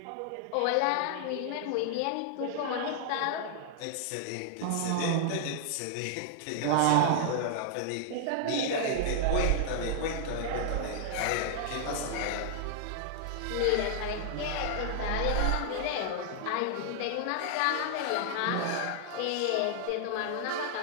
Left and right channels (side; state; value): both; different; correlation 0.00